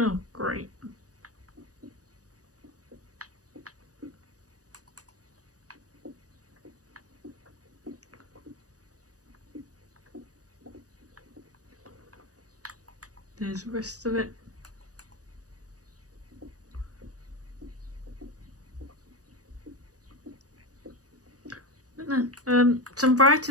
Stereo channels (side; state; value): left; late; 0.67 ms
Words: great. There's the rest of it. Some